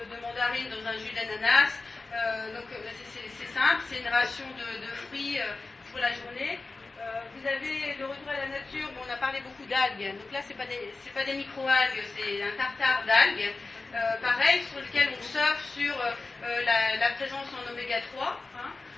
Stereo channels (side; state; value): right; quieter; 3.6 dB